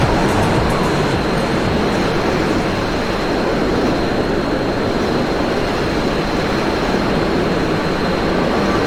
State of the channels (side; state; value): both; identical; correlation 1.00